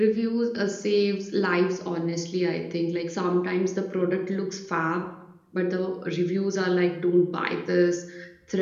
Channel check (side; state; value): both; identical; correlation 1.00